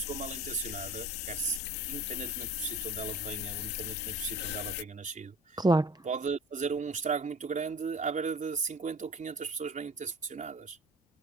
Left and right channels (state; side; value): normal; both; correlation 0.41